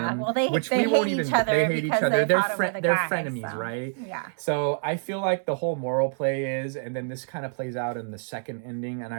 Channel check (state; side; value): silent; left; digital silence